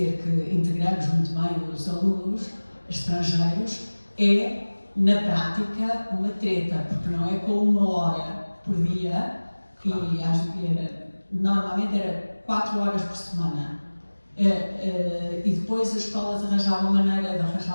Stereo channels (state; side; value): inverted; both; correlation -1.00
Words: que integramos muito bem os alunos estrangeiros, é, na prática, uma treta, porque não é com 1 hora por dia, normalmente era 4 horas por semana. E depois as escolas arranjavam maneira de